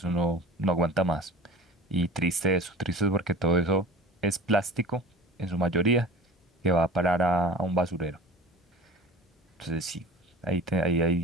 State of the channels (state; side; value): normal; both; correlation 0.39